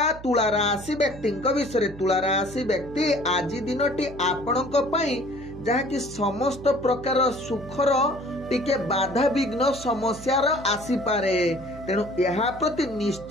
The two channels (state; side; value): noise; right; hum, 16 dB below the sound